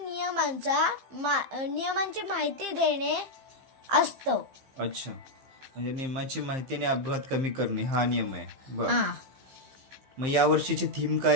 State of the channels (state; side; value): late; left; 15 ms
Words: नियमांची माहिती देणे असतो. अच्छा, म्हणजे नियमाची माहितीने अपघात कमी करणे हा नियम आहे. बर. मग या वर्षीची थीम